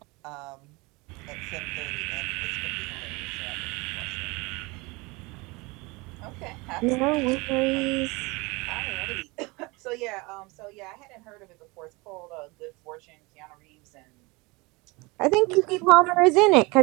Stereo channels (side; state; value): left; quieter; 25.2 dB